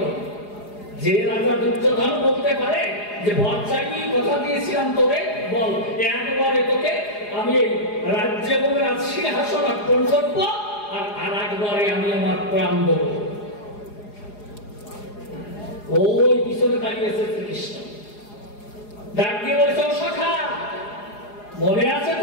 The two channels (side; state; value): right; late; 4.8 ms